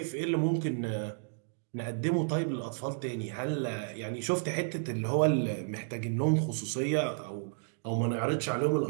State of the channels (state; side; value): silent; left; digital silence